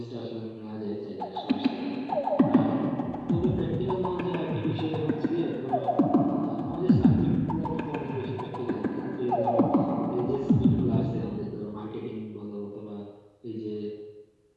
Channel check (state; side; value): identical; both; correlation 1.00